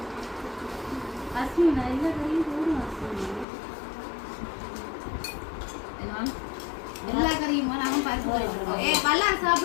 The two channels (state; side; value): drops out; right; at 3.5 s